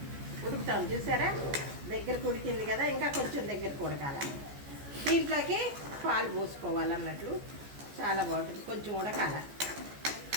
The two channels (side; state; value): left; late; 14 ms